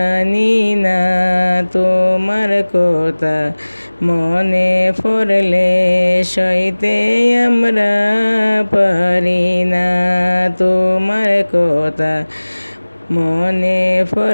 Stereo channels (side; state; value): both; inverted; correlation -1.00